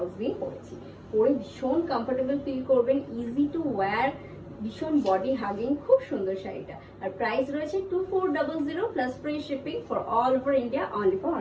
দিয়ে পরেছি। পরে ভীষণ কমফোর্টেবল ফিল করবেন, ইজি টু ওয়্যার, ভীষণ বডি হাগিং, খুব সুন্দর শাড়িটা। আর প্রাইস রয়েছে 2400 plus free shipping for all over India, only for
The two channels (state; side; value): identical; both; correlation 1.00